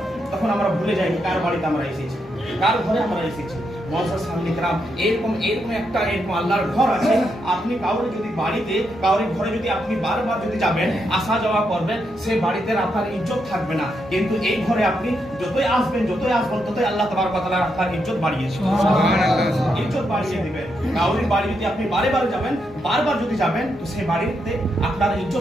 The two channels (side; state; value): both; normal; correlation 0.81